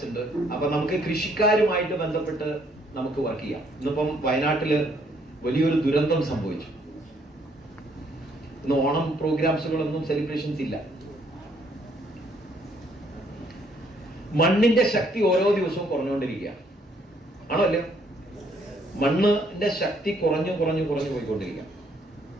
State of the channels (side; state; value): both; normal; correlation 0.67